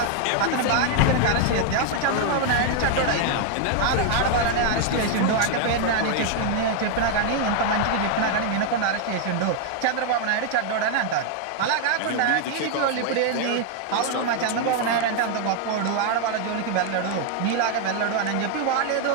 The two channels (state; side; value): different; both; correlation 0.00